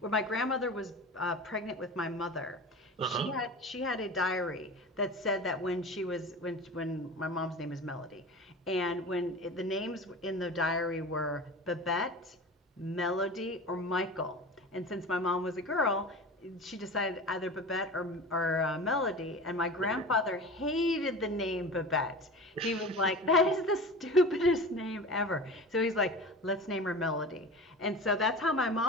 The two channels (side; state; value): both; normal; correlation 0.33